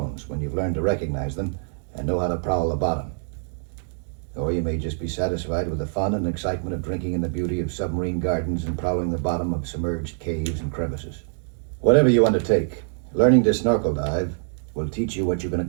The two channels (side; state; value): left; silent; digital silence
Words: when you've learned to recognize them and know how to prowl the bottom. Or you may just be satisfied with the fun and excitement of drinking in the beauty of submarine gardens and prowling the bottom of submerged caves and crevices. Whatever you undertake, learning to snorkel dive will teach you what you can